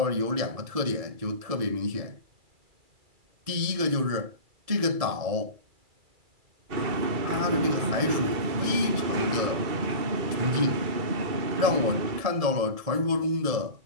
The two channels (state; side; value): late; left; 2.3 ms